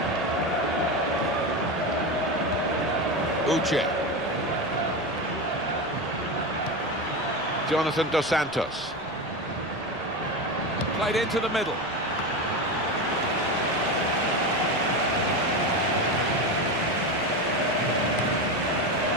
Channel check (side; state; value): left; noise; rumble, 23 dB below the sound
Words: Uche. Jonathan Dos Santos. Played into the middle.